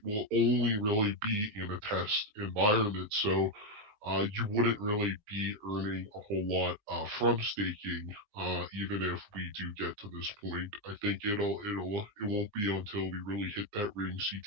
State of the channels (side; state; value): left; late; 19 ms